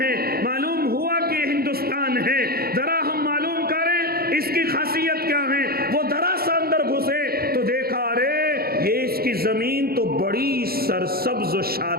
معلوم ہوا کہ ہندوستان ہے، ذرا ہم معلوم کریں اس کی خاصیت کیا ہے۔ وہ ذرا سا اندر گھسے تو دیکھا ارے یہ اس کی زمین تو بڑی سرسبز و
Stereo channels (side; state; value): left; late; 0.44 ms